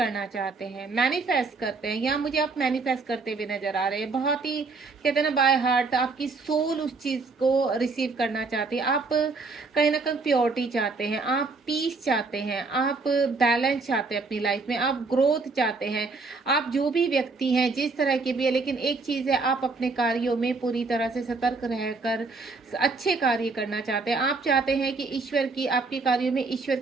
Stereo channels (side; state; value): left; quieter; 4.0 dB